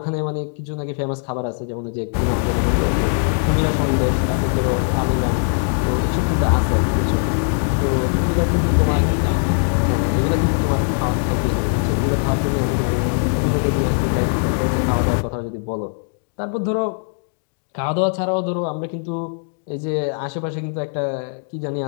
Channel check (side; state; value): right; silent; digital silence